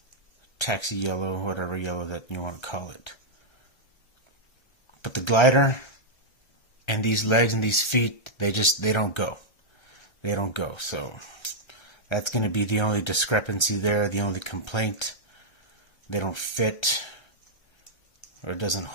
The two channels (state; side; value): late; right; 1.3 ms